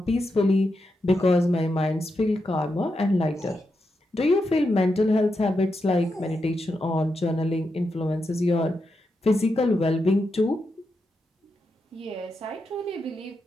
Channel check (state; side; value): normal; both; correlation 0.86